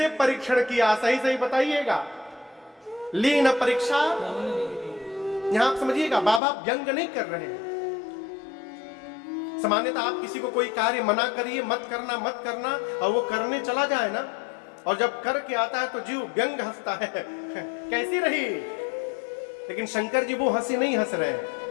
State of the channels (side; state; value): right; drops out; at 6.4 s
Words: परीक्षण किया? सही सही बताइएगा। ली न परीक्षा? यहां आप समझिएगा, बाबा व्यंग नहीं कर रहे हैं। सामान्यतः आप किसी को कोई कार्य मना करिए, मत करना, और वो करने चला जाए ना, और जब करके आता है तो जीव व्यंग हंसता है, कैसी रही? लेकिन शंकर जी वो हंसी नहीं हंस रहे हैं।